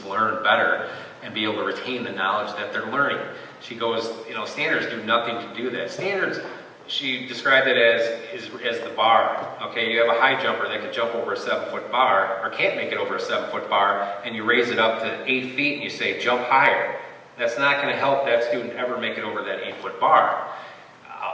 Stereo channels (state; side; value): identical; both; correlation 1.00